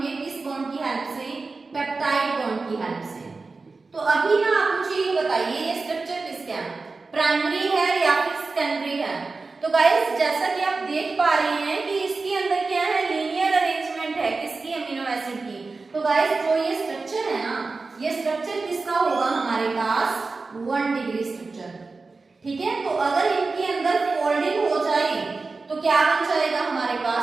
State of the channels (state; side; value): quieter; left; 3.9 dB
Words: किस बॉन्ड की हेल्प से, पेप्टाइड बॉन्ड की हेल्प से। तो अभी ना आप मुझे ये बताइए, ये स्ट्रक्चर किसका है, प्राइमरी है या फिर सेकेंडरी है। तो गाइस जैसा कि आप देख पा रहे हैं कि इसके अंदर क्या है, लीनियर अरेंजमेंट है किसकी, अमीनो एसिड की। तो गाइस जो ये स्ट्रक्चर है ना, ये स्ट्रक्चर किसका होगा हमारे पास, 1 डिग्री स्ट्रक्चर। ठीक है, तो अगर इनके अंदर फोल्डिंग हो जाए तो क्या बन जाएगा हमारे